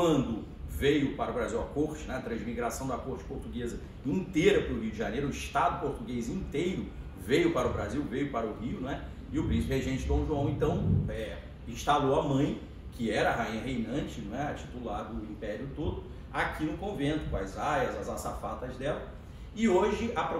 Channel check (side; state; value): both; identical; correlation 1.00